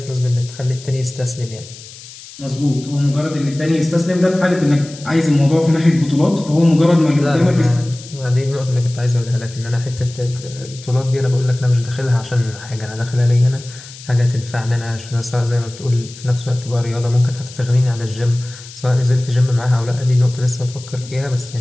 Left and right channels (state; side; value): noise; left; hiss, 17 dB below the sound